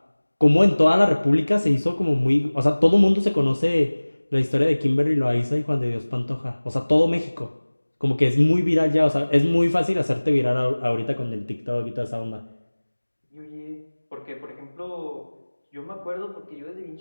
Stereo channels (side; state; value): both; inverted; correlation -1.00